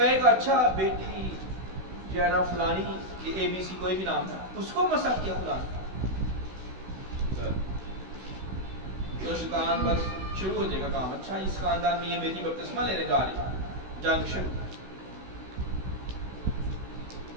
گا اچھا بیٹی جو ہے نا فلانی ABC کوئی بھی نام ہے اس کو مسا کیا خدا نے. تو شیطان بس شروع ہو جائے گا کام. اچھا اس خاندان میں یہ بیٹی بپتسمہ لینے جا رہی ہے، جنگ شروع.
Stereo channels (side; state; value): left; late; 16 ms